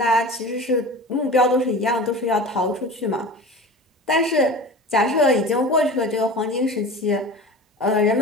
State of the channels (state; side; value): normal; both; correlation 0.34